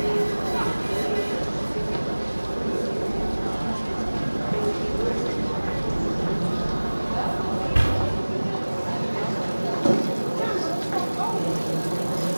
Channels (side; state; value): both; inverted; correlation -1.00